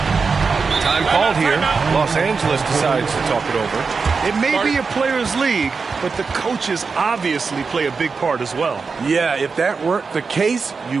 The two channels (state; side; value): quieter; left; 4.9 dB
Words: Time called here. Los Angeles decides to talk it over. It may be a players' league, but the coaches obviously play a big part as well. Yeah, if that weren't the case,